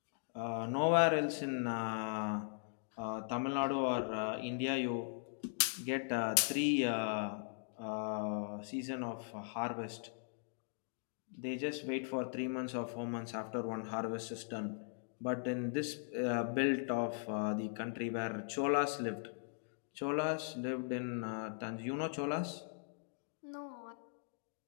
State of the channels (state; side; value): silent; right; digital silence